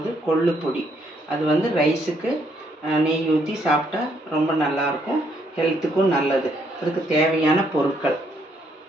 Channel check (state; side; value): normal; both; correlation 0.71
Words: கொள்ளு பொடி. அது வந்து ரைஸுக்கு நெய் ஊற்றி சாப்பிட்டா ரொம்ப நல்லாயிருக்கும், ஹெல்த்துக்கும் நல்லது. அதுக்கு தேவையான பொருட்கள்: